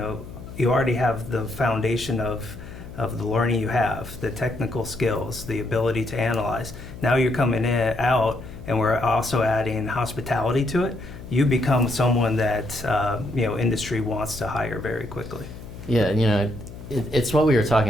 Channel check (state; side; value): noise; left; hum, 14 dB below the sound